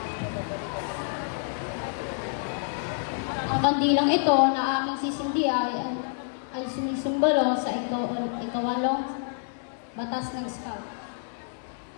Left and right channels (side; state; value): right; silent; 59 dB below the other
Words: kandilang ito na aking sisindihan ay sumisimbolo sa ikawalong batas ng Scout.